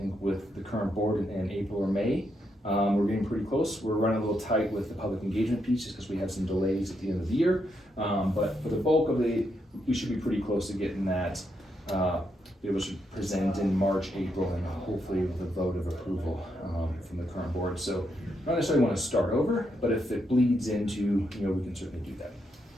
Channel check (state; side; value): normal; both; correlation 0.80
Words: with the current board in April or May. We're getting pretty close. We're running a little tight with the public engagement piece just because we have some delays at the end of the year. But for the bulk of we should be pretty close to getting that. It was presented in March, April, and hopefully with a vote of approval from the current board. So not necessarily want to start over, but if it bleeds into, we can certainly do